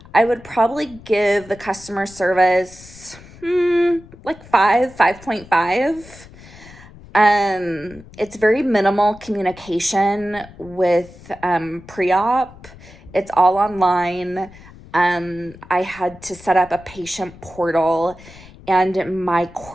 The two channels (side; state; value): left; noise; rumble, 20 dB below the sound